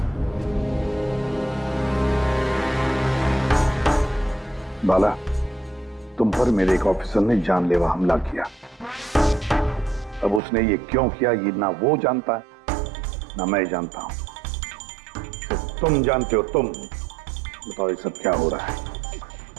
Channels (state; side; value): drops out; left; at 10.4 s